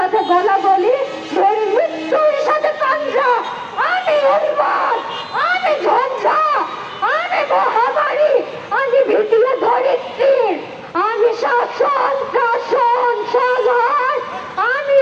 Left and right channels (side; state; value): both; identical; correlation 1.00